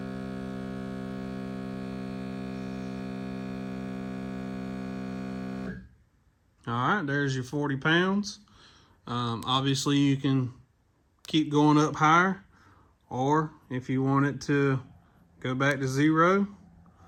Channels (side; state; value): both; identical; correlation 1.00